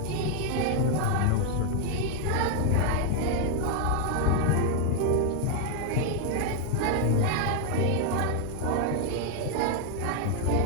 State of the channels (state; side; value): different; both; correlation 0.00